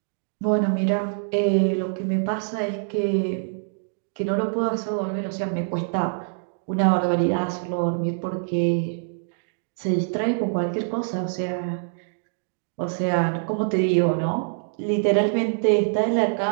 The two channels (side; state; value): left; silent; digital silence